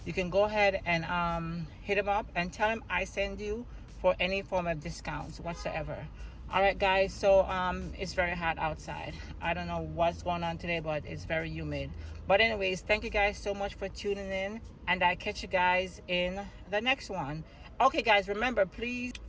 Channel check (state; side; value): identical; both; correlation 1.00